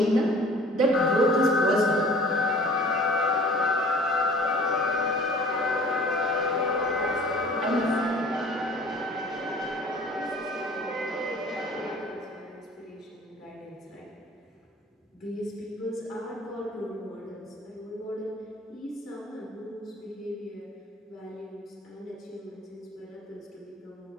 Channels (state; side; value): normal; both; correlation 0.49